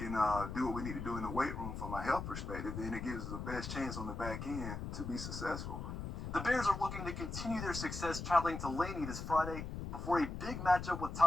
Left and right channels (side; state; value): left; noise; rumble, 6 dB below the sound